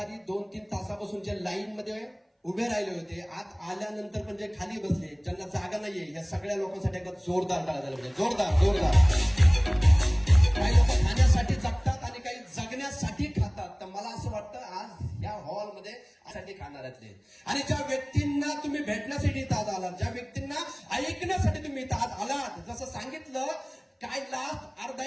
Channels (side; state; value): both; identical; correlation 1.00